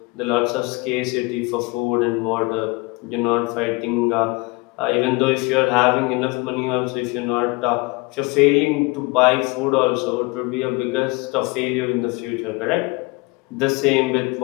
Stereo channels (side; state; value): right; quieter; 26.0 dB